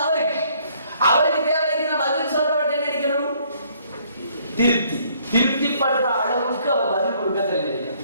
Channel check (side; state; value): both; inverted; correlation -0.64